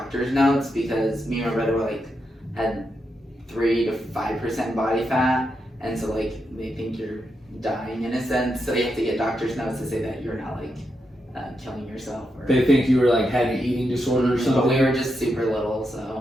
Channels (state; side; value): normal; both; correlation 0.84